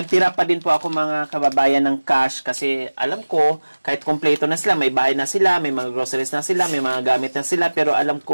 pa din po ako mga kababayan ng cash kasi alam ko, kahit kompleto na sila, may bahay na sila, may mga groceries na sila, may mga gamit na sila, pero alam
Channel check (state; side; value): inverted; both; correlation -1.00